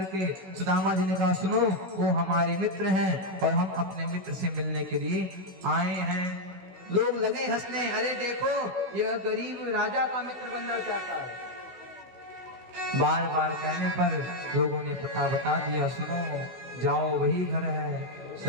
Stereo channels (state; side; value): late; left; 16 ms